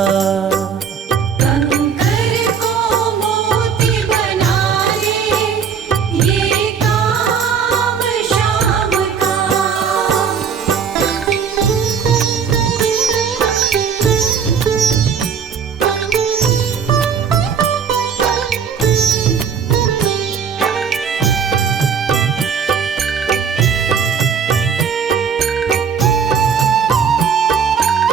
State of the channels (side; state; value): left; quieter; 6.7 dB